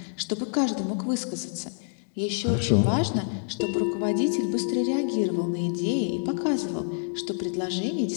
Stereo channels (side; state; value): right; silent; digital silence